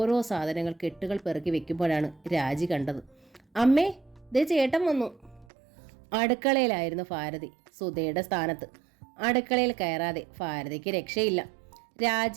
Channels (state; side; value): drops out; left; at 5.5 s